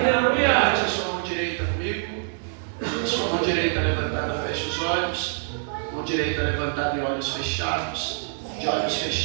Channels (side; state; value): left; silent; digital silence